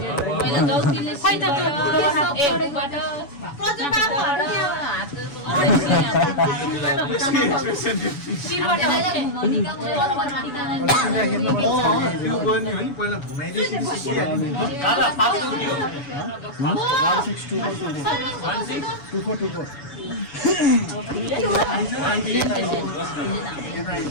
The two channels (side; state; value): right; late; 7.0 ms